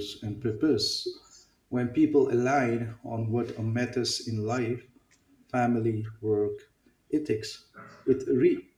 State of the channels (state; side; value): identical; both; correlation 1.00